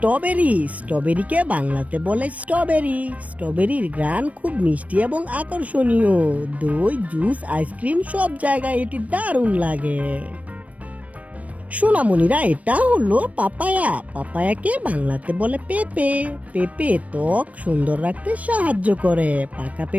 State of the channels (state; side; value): late; left; 0.067 ms